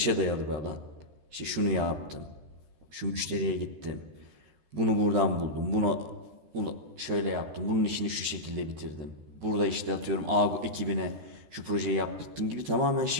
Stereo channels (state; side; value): late; left; 13 ms